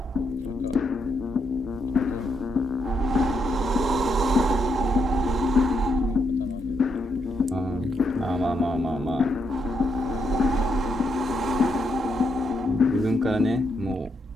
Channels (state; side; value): normal; both; correlation 0.79